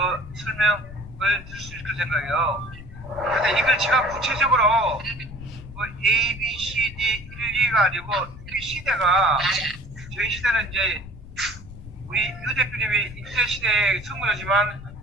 설명을 드릴 수 있을 생각이에요. 근데 이걸 제가 구체적으로 A, B, C, D 1, 2가 아니고 이 시대가 저희 시대는 이제 우리 유 대표님이 인터넷 시대의 선구자지만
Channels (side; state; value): left; noise; rumble, 15 dB below the sound